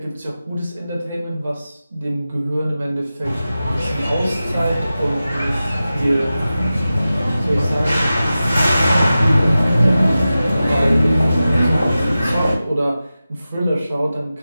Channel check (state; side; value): inverted; both; correlation -0.94